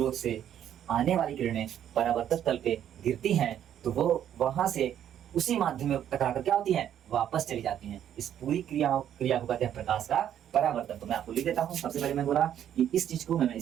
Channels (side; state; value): left; quieter; 10.2 dB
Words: से आने वाली किरणें परावर्तक तल पे गिरती हैं, तो वो वहां से उसी माध्यम में टकराकर क्या होती हैं, वापस चली जाती हैं। इस पूरी क्रिया को कहते हैं प्रकाश का परावर्तन। तो मैं आपको लिख देता हूँ। सबसे पहले मैं बोला कि इस चीज को, मैं